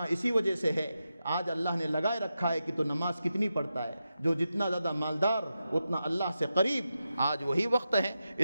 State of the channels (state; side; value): inverted; both; correlation -0.89